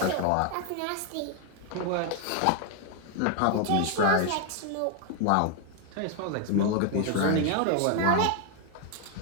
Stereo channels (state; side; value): different; both; correlation 0.01